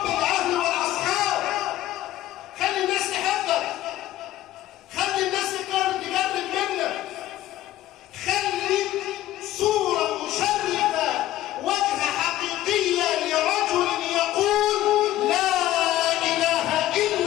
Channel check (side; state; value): right; quieter; 14.4 dB